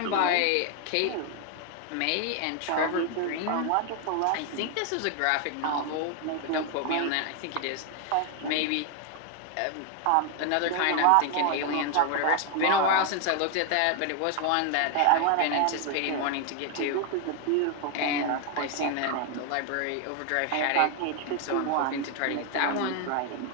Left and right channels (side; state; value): both; different; correlation 0.00